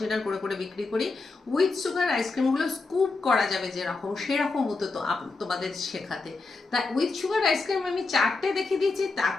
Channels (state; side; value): quieter; right; 3.8 dB